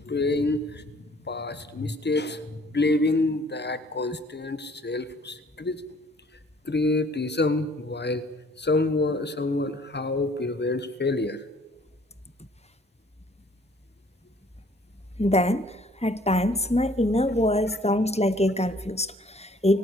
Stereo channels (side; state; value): both; normal; correlation 0.58